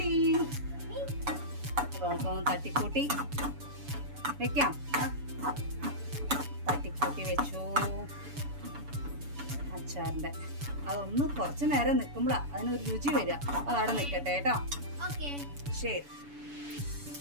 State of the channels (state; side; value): late; left; 7.0 ms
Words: തട്ടിക്കൂട്ടി വെക്കാം. തട്ടിക്കൂട്ടി വെച്ചു അച്ചാറിന്റെ. അതൊന്ന് കുറച്ചു നേരം നിൽക്കുമ്പോഴാ അതിനൊരു രുചി വരിക. അതവിടെ നിൽക്കട്ടെ കേട്ടോ. ശരി.